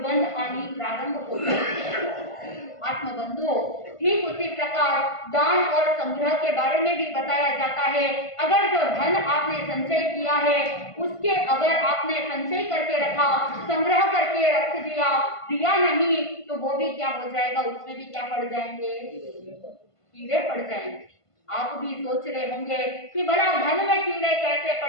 आनी प्रारंभ होती है। आत्मबंधुओं, ठीक उसी प्रकार दान और संग्रह के बारे में भी बताया जाता है। अगर जो धन आपने संचय किया है उसके अगर आपने संचय करके रखा, संग्रह करके रख दिया नहीं तो वो भी क्या हो जाएगा, उसमें भी क्या पड़ जाएंगे, कीड़े पड़ जाएंगे। आप भी सोच रहे होंगे कि भला धन में कीड़े कैसे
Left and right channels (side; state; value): right; late; 1.5 ms